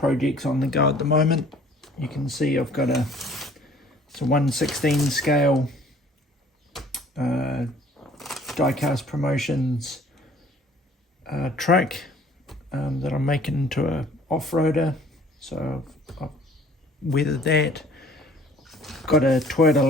on the go at the moment. You can see I've got it's a 1/16 scale Diecast Promotions truck that I'm making into a off-roader. So I've weathered that. Got a Toyota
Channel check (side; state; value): both; normal; correlation 0.54